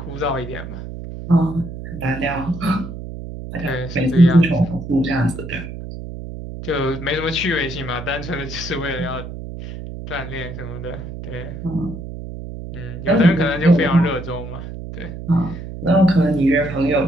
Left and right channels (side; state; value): right; noise; hum, 10 dB below the sound